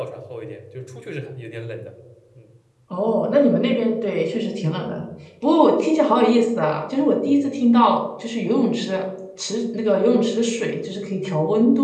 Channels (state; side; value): identical; both; correlation 1.00